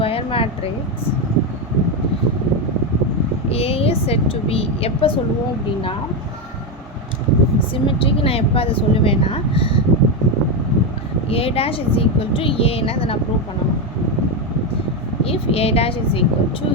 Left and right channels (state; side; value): normal; both; correlation 0.09